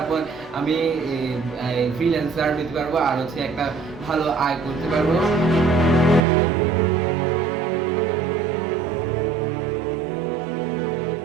পর আমি ফ্রিল্যান্সার হতে পারবো আর হচ্ছে একটা ভালো আয় করতে পারবো।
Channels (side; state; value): left; drops out; at 6.2 s